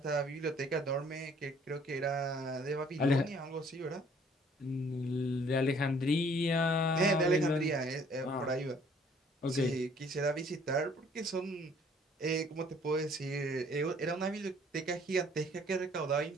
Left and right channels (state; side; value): normal; both; correlation 0.58